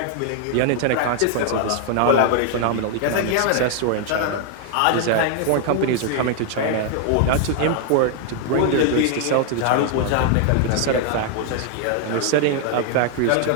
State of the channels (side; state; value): both; different; correlation 0.00